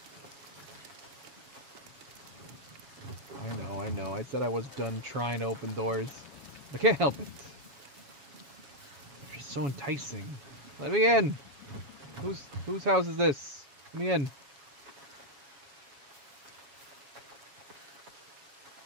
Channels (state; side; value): late; left; 7.2 ms